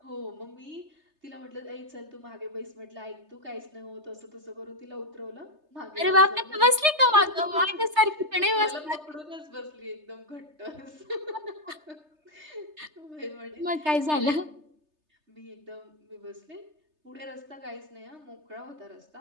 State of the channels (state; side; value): late; left; 3.3 ms